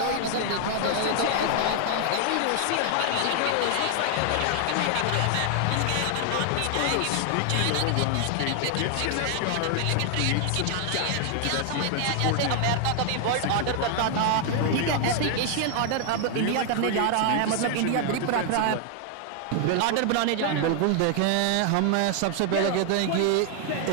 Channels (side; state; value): both; different; correlation 0.00